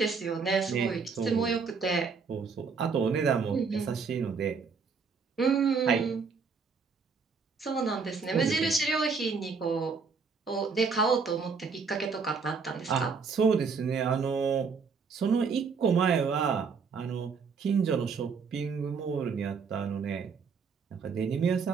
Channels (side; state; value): left; quieter; 5.3 dB